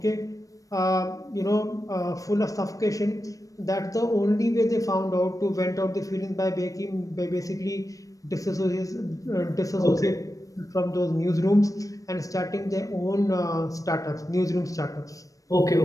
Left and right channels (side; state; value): right; late; 0.16 ms